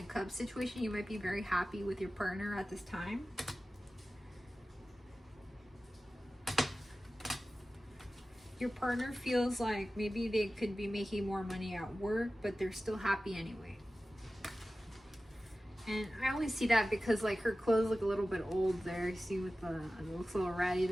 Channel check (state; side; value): normal; both; correlation 0.95